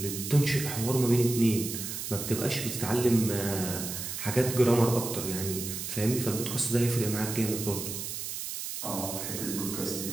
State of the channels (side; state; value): right; noise; hiss, 6 dB below the sound